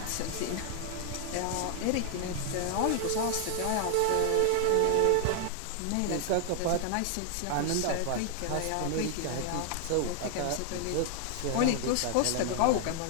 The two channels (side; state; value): both; different; correlation 0.00